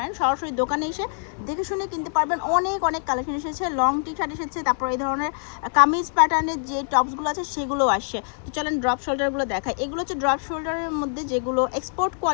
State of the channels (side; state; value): right; silent; 62 dB below the other